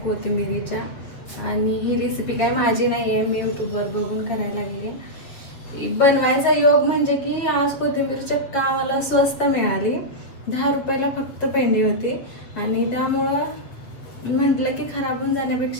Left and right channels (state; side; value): late; right; 7.6 ms